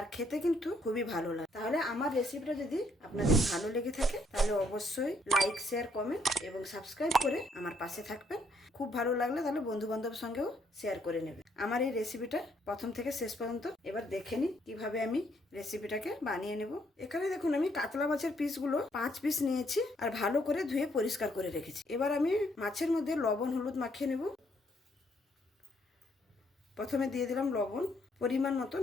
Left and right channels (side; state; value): both; normal; correlation 0.70